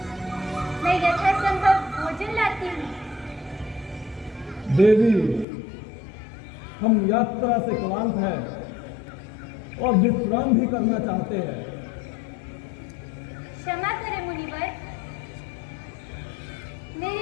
मैं यथासंभव भोजन लाती हूँ। देवी, हम यात्रा से क्लांत हैं और विश्राम भी करना चाहते हैं। क्षमा करें मुनिवर, मेरे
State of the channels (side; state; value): right; drops out; at 5.5 s